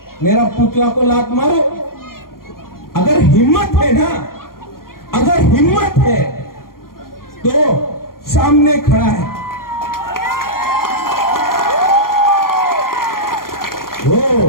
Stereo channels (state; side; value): late; right; 0.92 ms